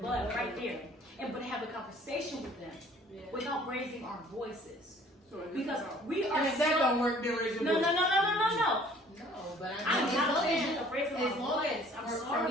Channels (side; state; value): both; normal; correlation 0.55